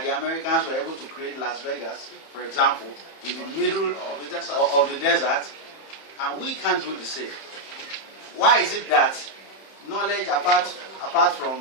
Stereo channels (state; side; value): late; right; 31 ms